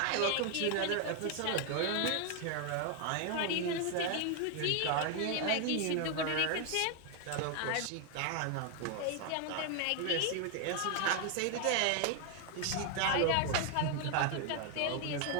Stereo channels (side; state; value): both; different; correlation 0.01